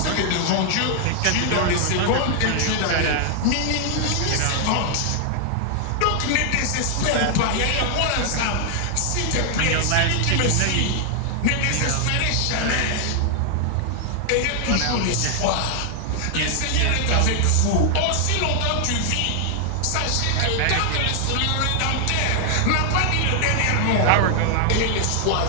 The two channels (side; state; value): both; different; correlation 0.00